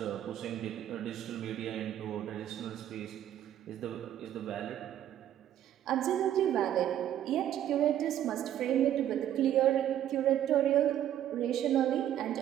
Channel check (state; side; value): quieter; left; 11.3 dB